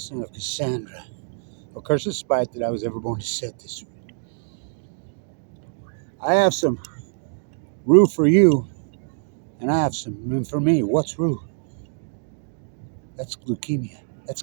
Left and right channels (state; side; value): silent; left; digital silence